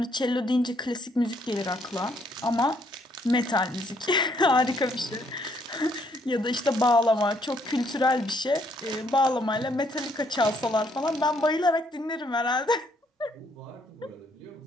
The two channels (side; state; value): both; normal; correlation 0.69